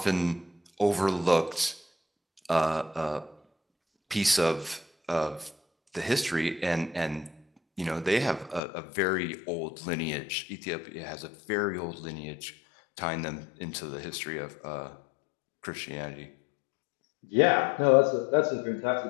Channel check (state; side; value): drops out; right; at 8.6 s